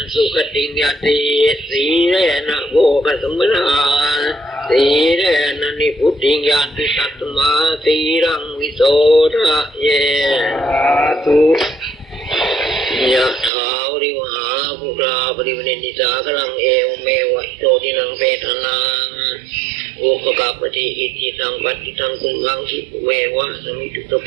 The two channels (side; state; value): left; drops out; at 13.5 s